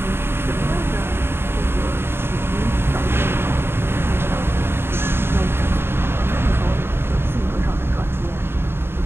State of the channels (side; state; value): left; late; 0.11 ms